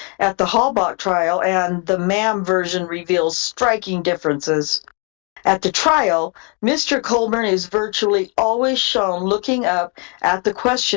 at the Halbach trial and the Ma'am version reveals striking differences. At the trial, Mr. Colborn is virtually always shown looking up at the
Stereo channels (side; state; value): right; quieter; 35.3 dB